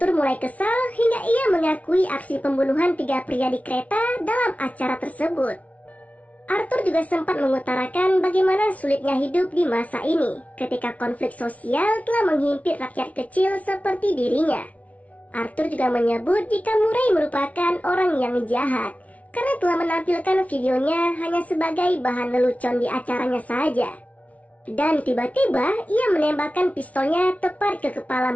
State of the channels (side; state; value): right; late; 0.068 ms